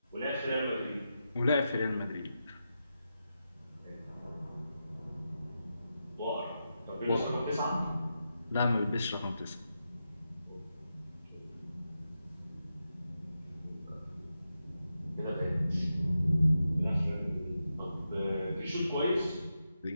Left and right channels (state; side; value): inverted; both; correlation -0.88